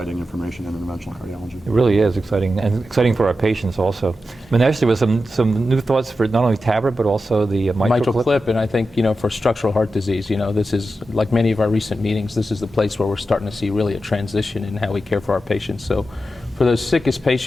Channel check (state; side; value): normal; both; correlation 0.91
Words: information in interventional cardiology. It really is exciting, and exciting for our patients also. Manesh, there was some new thoughts for not only TAVR, but also the mitral clip. And I think, for structural heart disease, this is, like many of our recent meetings, this is the place where we're starting to see really a transition in how we care for our patients. So for those sickest